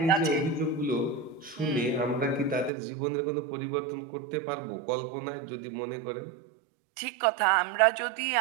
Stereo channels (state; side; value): drops out; left; at 2.7 s